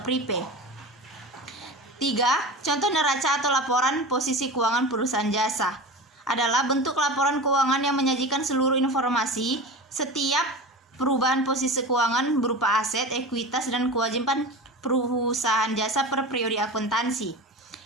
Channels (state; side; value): normal; both; correlation 0.30